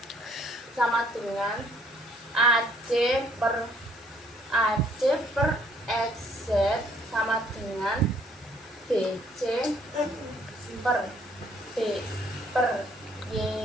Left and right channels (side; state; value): both; normal; correlation 0.63